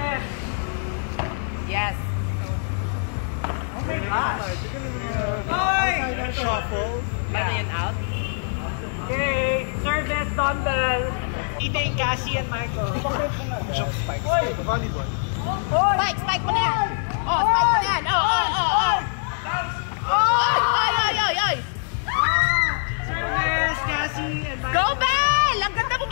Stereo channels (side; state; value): right; silent; 63 dB below the other